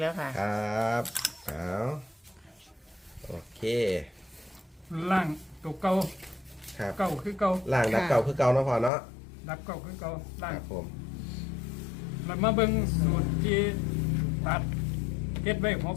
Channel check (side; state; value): right; drops out; at 8.9 s